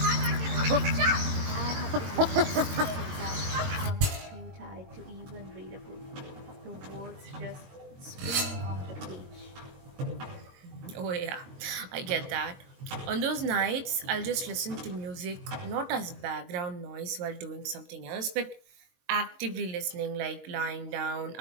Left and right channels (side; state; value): left; late; 22 ms